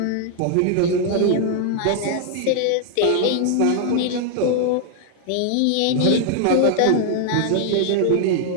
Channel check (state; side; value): different; both; correlation 0.00